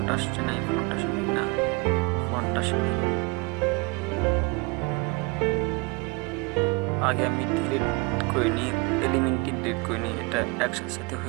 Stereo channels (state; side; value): quieter; left; 28.0 dB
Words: আসছে না, ফন্ট আসেনি না, ফন্ট আসেনি। আগে আমি ডিলিট করে নিই, এলিমেন্টটি ডিলিট করে নিই, এটা একসাথে